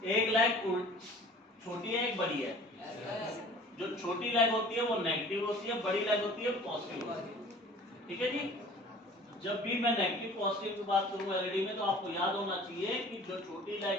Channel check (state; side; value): normal; both; correlation 0.47